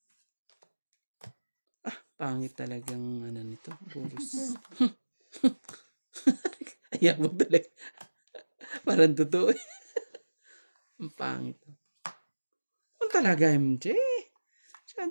Pangit talagang ano nito. Puros. Ayaw mo talaga. Parang totoo eh. Ang pangit. Ano talaga, MJ?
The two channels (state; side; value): inverted; both; correlation -1.00